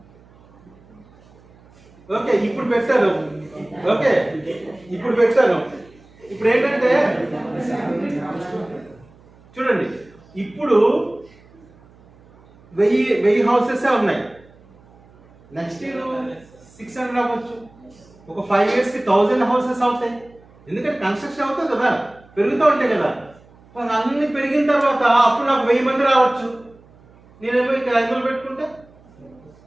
ఓకే ఇప్పుడు పెట్టాను. ఓకే ఇప్పుడు పెట్టాను. ఇప్పుడు ఏంటంటే చూడండి, ఇప్పుడు 1000 హౌసెస్ ఉన్నాయి. నెక్స్ట్ ఇయర్ 600 అవ్వచ్చు. ఒక 5 years కి 1000 హౌసెస్ అవుతాయి. ఎందుకంటే కన్స్ట్రక్షన్ అవుతుంది కదా, పెరుగుతూ ఉంటాయి కదా. అన్ని పెరిగిన తర్వాత అప్పుడు నాకు 1000 మంది రావచ్చు. నేనేమో ఇక్కడ 500 పెట్టుకుంటే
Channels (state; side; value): noise; right; hum, 27 dB below the sound